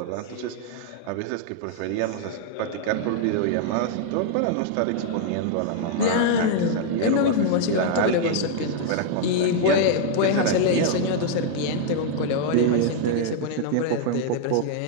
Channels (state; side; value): different; both; correlation 0.00